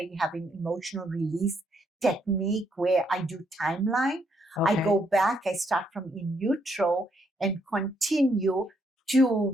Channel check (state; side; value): normal; both; correlation 0.74